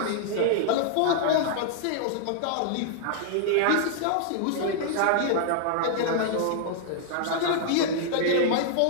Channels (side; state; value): both; different; correlation -0.01